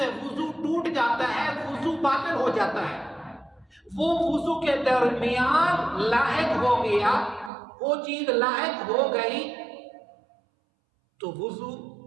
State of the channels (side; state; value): left; drops out; at 7.5 s